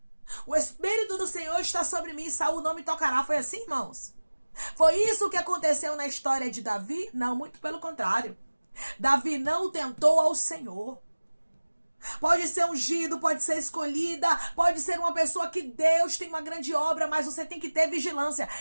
O Espírito do Senhor está sobre mim, Saul não me tocará. Foi assim, irmãos? Foi isso que aconteceu na história de Davi? Não, muito pelo contrário. Davi não tentou ao Senhor. Pode ser ungido, pode ser escolhida, pode ser uma pessoa que Deus tem uma grande obra, mas você tem que ter vigilância.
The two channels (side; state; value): both; inverted; correlation -1.00